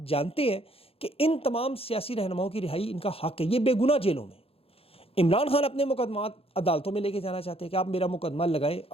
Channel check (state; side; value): late; right; 0.28 ms